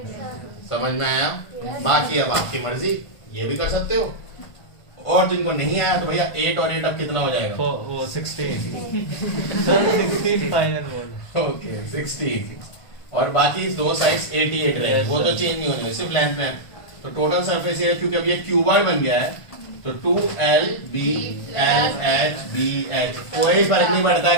समझ में आया? बाकी अब आपकी मर्जी, ये भी कर सकते हो, और जिनको नहीं आया तो भैया 8 और 8 अब कितना हो जाएगा? वो 16 16 फाइनल बोल। ओके 16, और बाकी दो साइड्स 88 रहे, वो तो चेंज नहीं होने, सिर्फ लेंथ में। तो टोटल सरफेस एरिया, क्योंकि अब ये क्यूबॉइड बन गया है, तो 2LBLHBH, कोई फर्क नहीं पड़ता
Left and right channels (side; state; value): right; late; 1.5 ms